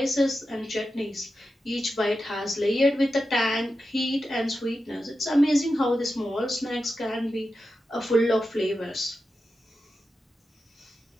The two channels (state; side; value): normal; both; correlation 0.90